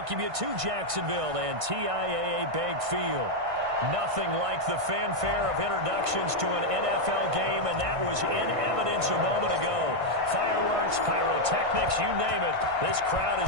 you to Jacksonville and TIAA Bank Field. Nothing like the fanfare of introductions to an NFL game, and that was in evidence a moment ago. Fireworks, pyrotechnics, you name it. This crowd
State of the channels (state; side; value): late; left; 1.6 ms